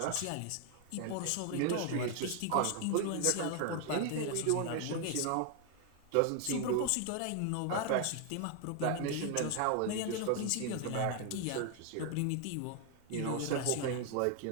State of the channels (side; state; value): both; different; correlation 0.00